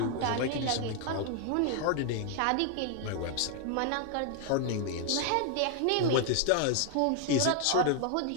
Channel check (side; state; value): both; different; correlation 0.00